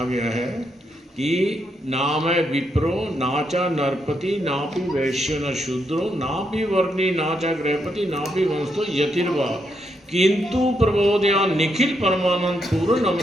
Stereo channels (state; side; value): normal; both; correlation 0.79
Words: गया है कि नाम विप्रो नाचा नरपति नापि वैश्य न शूद्रो नापि वर्णी नाचा गृहपति नापि वंशो यतिर्वा किंतु प्रबोधया निखिल परमानंद पूर्ण